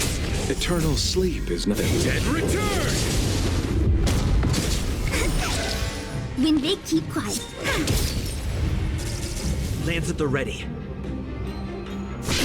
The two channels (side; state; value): both; identical; correlation 1.00